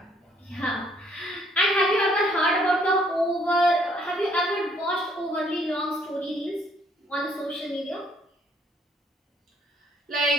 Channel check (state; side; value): normal; both; correlation 0.65